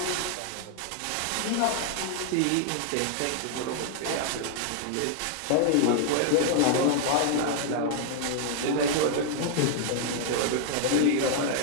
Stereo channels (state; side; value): different; both; correlation 0.00